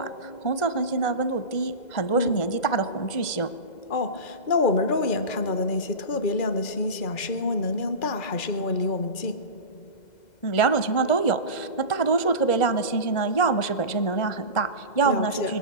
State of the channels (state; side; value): late; right; 2.0 ms